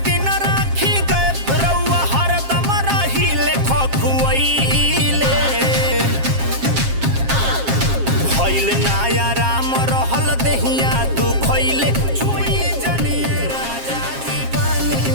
दिन राखी गए रउआ हरदम रहिले खखुआइले भइल नाया राम रहल देहिया तू खइले छुई जनिए राजा जी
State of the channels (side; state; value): left; late; 7.4 ms